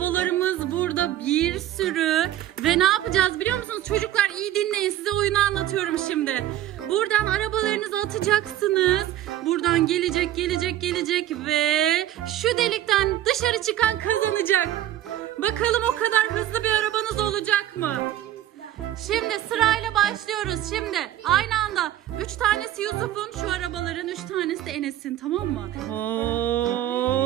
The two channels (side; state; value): left; quieter; 12.9 dB